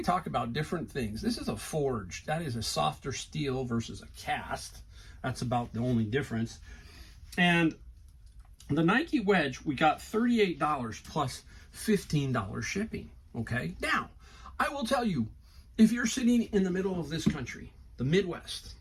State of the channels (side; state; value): both; identical; correlation 1.00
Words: talk about different things. This is a forged. That is a softer steel versus a cast. That's about the only difference. And the Nike wedge, we got $38 plus $15 shipping. Okay, now I will tell you, if you're sitting in the middle of this country, the Midwest,